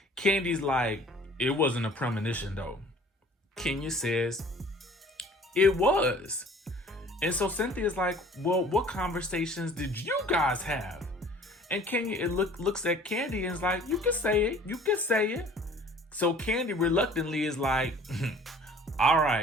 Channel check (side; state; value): both; normal; correlation 0.50